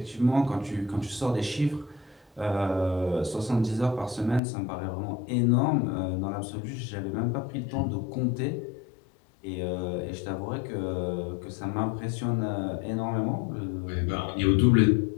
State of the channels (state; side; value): drops out; right; at 4.4 s